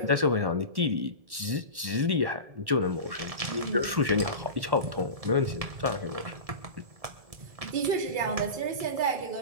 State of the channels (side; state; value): left; late; 1.1 ms